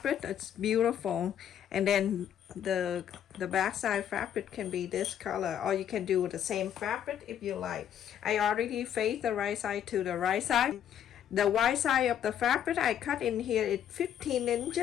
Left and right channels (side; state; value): right; quieter; 9.7 dB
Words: It's beautiful, and then the back side fabric can be this color, or you can do the same fabric if you like. I already faced the right side to the right side. The wide side of the fabric I cut in here is 15